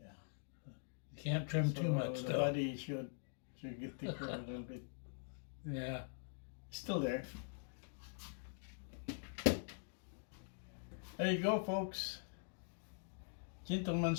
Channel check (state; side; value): silent; right; digital silence